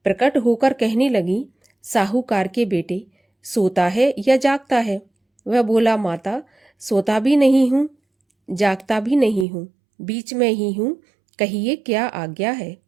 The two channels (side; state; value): left; drops out; at 9.5 s